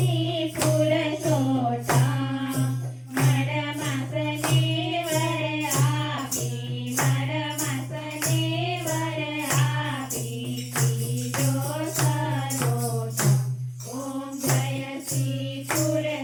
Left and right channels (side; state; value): both; identical; correlation 1.00